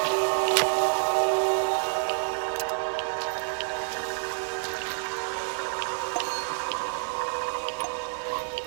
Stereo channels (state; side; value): silent; left; digital silence